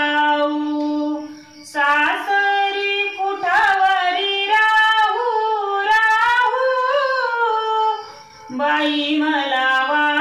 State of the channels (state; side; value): identical; both; correlation 1.00